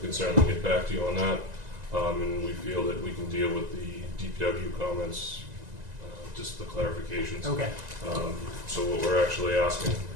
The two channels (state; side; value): late; left; 1.9 ms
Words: certainly get back to you on that. And we feel that we can deal with the DPW comments, just the clarifications. Okay. So what we're actually asking